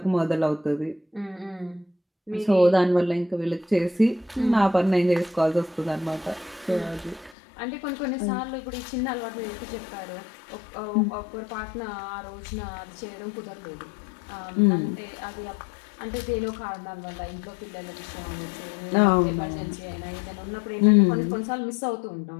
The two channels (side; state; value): right; drops out; at 7.4 s